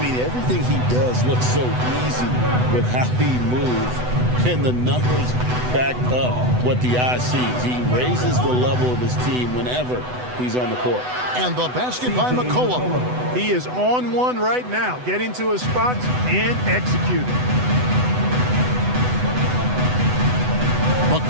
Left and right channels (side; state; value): left; late; 8.0 ms